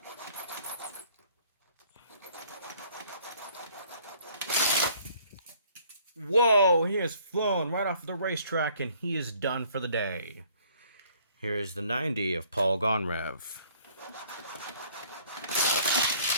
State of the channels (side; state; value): both; inverted; correlation -0.59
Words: Whoa, he has flown right off the racetrack and he is done for the day. Here is the 90 of Paul Gonrev.